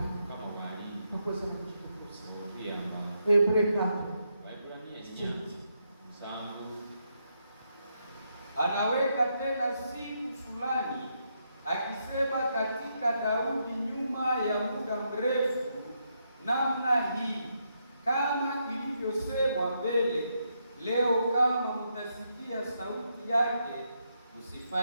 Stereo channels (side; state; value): both; inverted; correlation -0.80